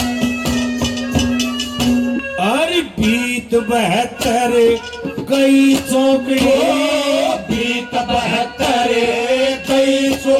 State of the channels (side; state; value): both; identical; correlation 1.00